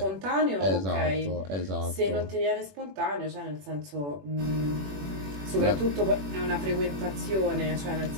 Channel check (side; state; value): left; late; 21 ms